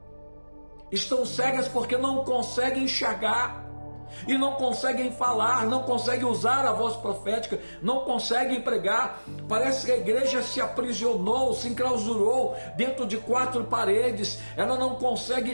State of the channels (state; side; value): inverted; both; correlation -1.00